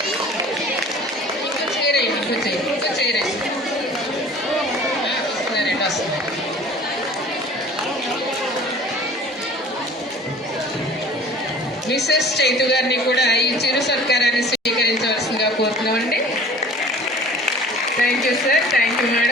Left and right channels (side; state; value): both; normal; correlation 0.46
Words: మిసెస్ చైతు గారిని కూడా ఈ చిరు సత్కారాన్ని స్వీకరించవలసిందిగా కోరుతున్నామండి. Thank you sir, thank you